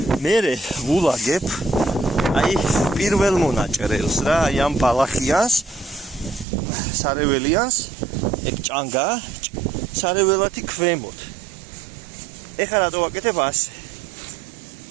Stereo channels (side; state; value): left; drops out; at 6.5 s